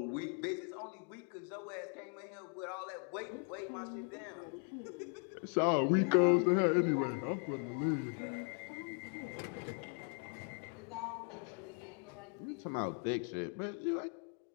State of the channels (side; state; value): right; quieter; 38.8 dB